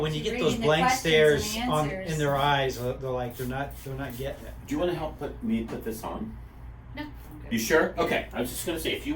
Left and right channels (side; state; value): both; identical; correlation 1.00